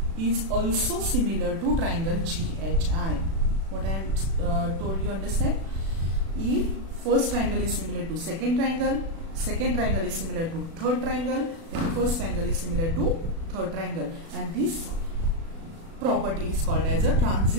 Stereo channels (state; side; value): late; left; 36 ms